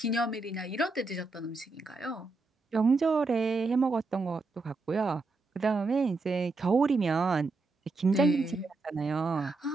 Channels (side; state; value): left; quieter; 3.5 dB